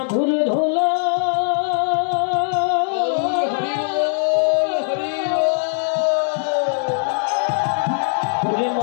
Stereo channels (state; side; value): silent; right; 57 dB below the other